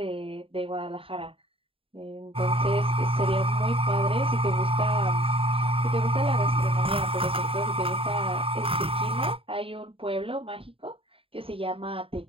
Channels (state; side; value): late; left; 0.27 ms